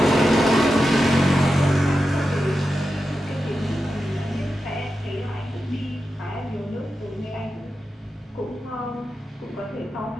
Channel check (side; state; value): both; normal; correlation 0.90